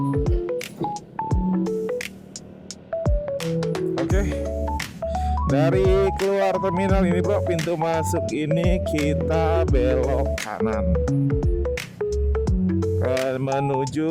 Oke. Dari keluar terminal ini, bro, pintu masuk ini kita belok kanan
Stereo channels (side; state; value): both; identical; correlation 1.00